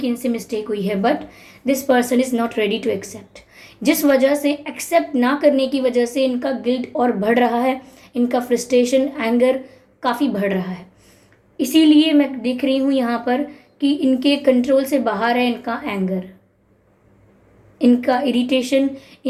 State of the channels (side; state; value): both; identical; correlation 1.00